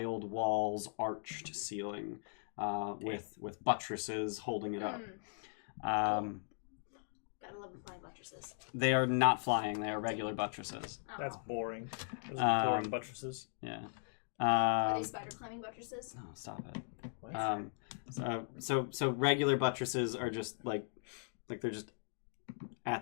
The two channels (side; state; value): right; silent; digital silence